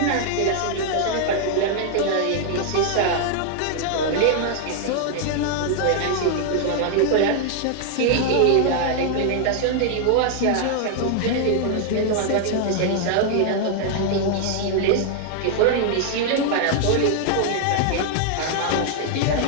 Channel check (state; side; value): different; both; correlation 0.00